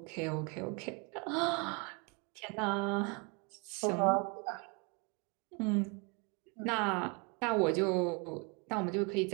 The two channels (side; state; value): left; quieter; 31.8 dB